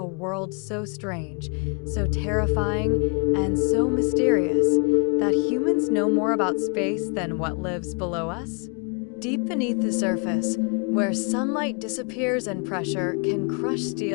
world so strange, so terrifying, and so mysterious that humans know more about space than what lives below us? Deep beneath the surface, where sunlight disappears and pressure can crush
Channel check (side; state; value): right; quieter; 36.5 dB